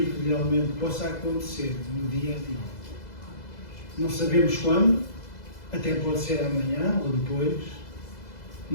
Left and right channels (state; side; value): late; right; 2.0 ms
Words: que realmente possa acontecer no dia a dia. Não sabemos quando, até pode ser amanhã ou depois,